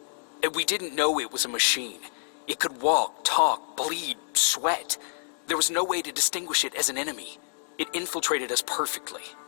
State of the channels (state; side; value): silent; right; digital silence